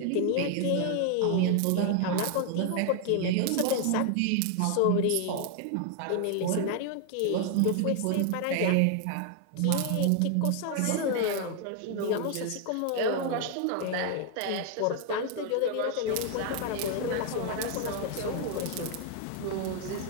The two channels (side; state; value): both; different; correlation 0.00